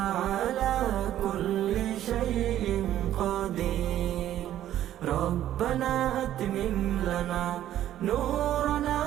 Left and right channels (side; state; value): left; quieter; 12.3 dB